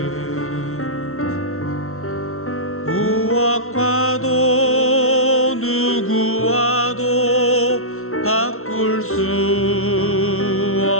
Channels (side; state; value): right; late; 0.62 ms